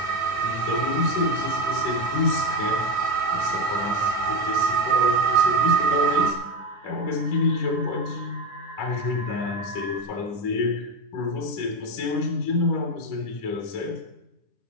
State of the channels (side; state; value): right; late; 9.9 ms